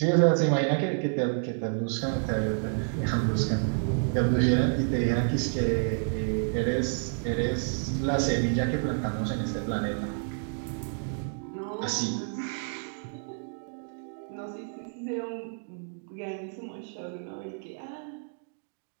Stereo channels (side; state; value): left; silent; 58 dB below the other